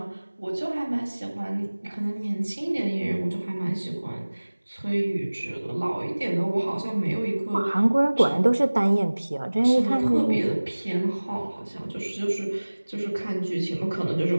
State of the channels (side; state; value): both; inverted; correlation -1.00